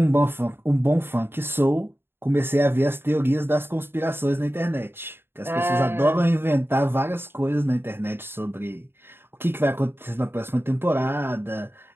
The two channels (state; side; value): late; left; 0.11 ms